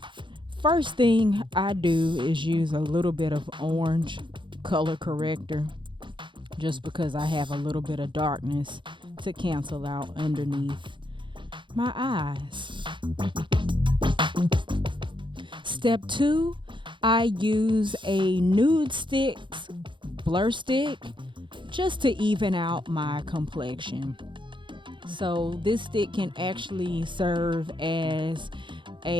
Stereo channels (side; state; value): left; late; 0.23 ms